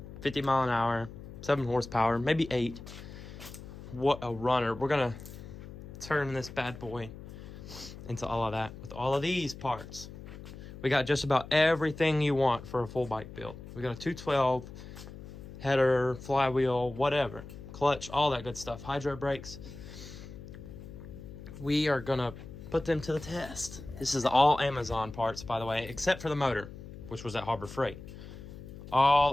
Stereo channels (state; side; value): noise; left; hum, 13 dB below the sound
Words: 50 mile an hour, 7 horsepower, maybe 8. What a runner. We're going to turn this bad boy into all of that with all of these parts. We got just about everything you want for a full bike build. We got a 212, header, flywheel, whatever, clutch, all that good stuff, hydro brakes. We are gonna put them to the test. This is all Amazon parts, by the way, except for the motor, which was at Harbor Freight.